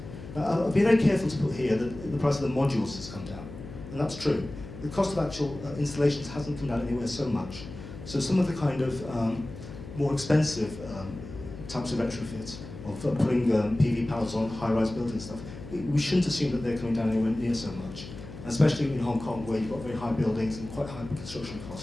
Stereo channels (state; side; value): noise; left; hum, 13 dB below the sound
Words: I'll be very careful to put here that the price of the modules has come down, and that's true. The cost of actual installations hasn't come down anywhere so much. So some of the kind of more expensive types of retrofits, of putting PV panels on high-rise buildings and stuff, we shouldn't assume that they're coming down anywhere near so much. And especially in Hong Kong, where you've got very high buildings and quite high construction